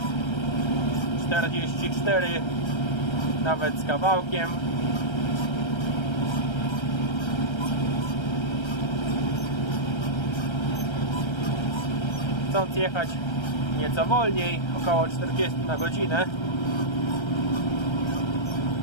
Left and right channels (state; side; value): late; right; 1.3 ms